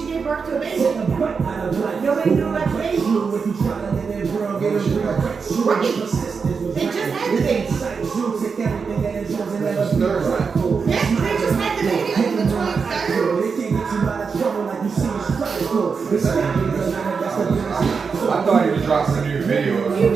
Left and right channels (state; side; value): quieter; left; 5.4 dB